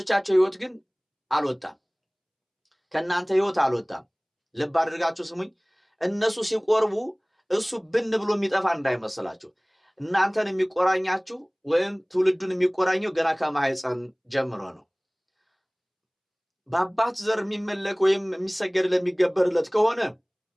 ህይወት ግን አልወጣም። ከእናንተ ሕይወት አልወጣም። ልብ አድርጋችሁ ስሙኝ። እነሱ ሲቆርቡ እሱ ብን ብሎ የሚጠፋ እንዳይመስላችሁ። እናንተን የሚቆራኛችሁ ወይም ትውልዱን የሚቆራኘው ገና ከማህፀን ጀምሮ ነው። በአባት ዘር የሚመለክ ወይም የሚሰገድ ለሚገበርለት ከሆነ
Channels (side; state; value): both; identical; correlation 1.00